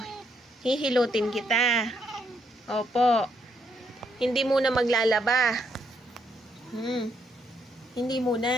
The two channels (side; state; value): both; normal; correlation 0.75